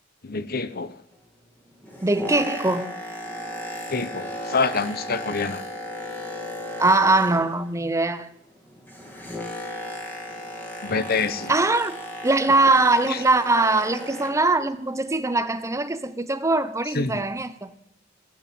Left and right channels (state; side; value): normal; both; correlation 0.40